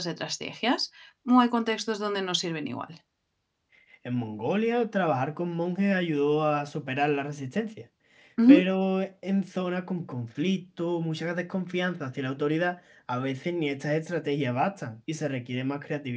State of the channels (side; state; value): both; identical; correlation 1.00